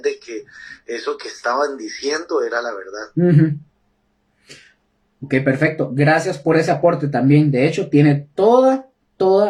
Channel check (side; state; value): both; identical; correlation 1.00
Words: que eso que estaban diciendo era la verdad. Ok, perfecto. Gracias por ese aporte también. De hecho, tiene toda